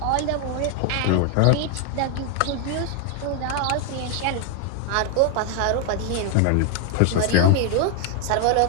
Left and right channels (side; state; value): both; different; correlation 0.00